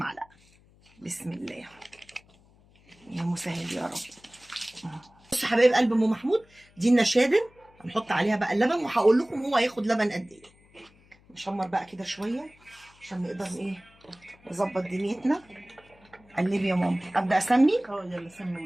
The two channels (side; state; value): left; noise; hum, 29 dB below the sound